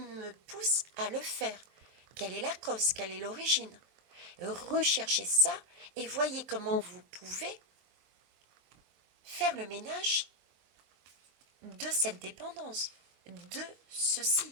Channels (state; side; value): late; left; 23 ms